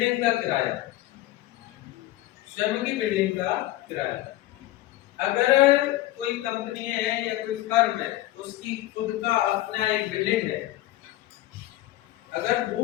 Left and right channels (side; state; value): right; quieter; 16.1 dB